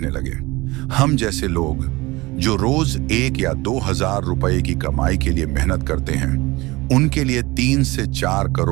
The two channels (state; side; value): quieter; left; 21.6 dB